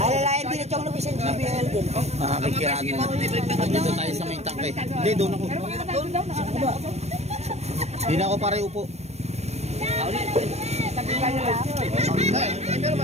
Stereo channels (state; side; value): late; left; 0.31 ms